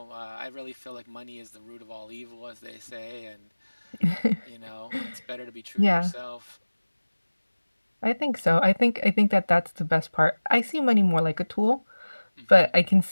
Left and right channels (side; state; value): both; inverted; correlation -1.00